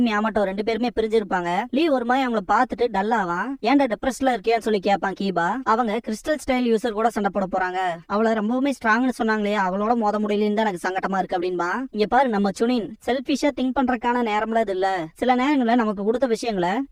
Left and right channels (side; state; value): both; identical; correlation 1.00